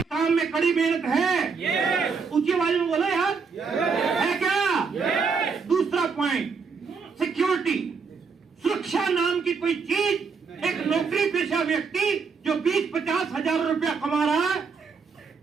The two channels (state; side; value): quieter; left; 5.3 dB